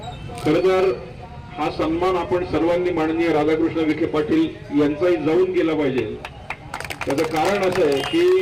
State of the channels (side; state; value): both; identical; correlation 1.00